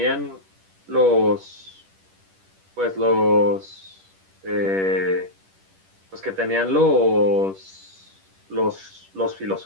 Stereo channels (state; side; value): late; left; 10 ms